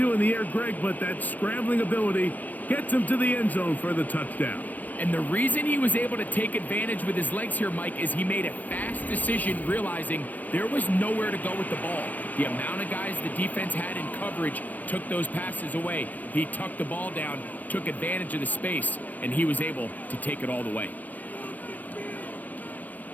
in the air, Greg, but that scrambling ability gets him to the end zone for the touchdown. And the reason he was able to take advantage with his legs here, Mike, is he made a fast decision realizing there was nowhere to go with the ball. The amount of guys the defense had in coverage took those passes away. He tucked the ball down, took advantage of the space, and he was able to take it all the way.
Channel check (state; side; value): late; right; 0.081 ms